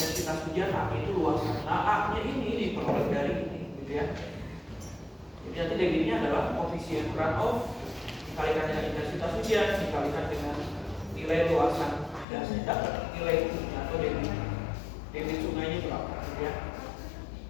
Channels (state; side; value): drops out; right; at 12.2 s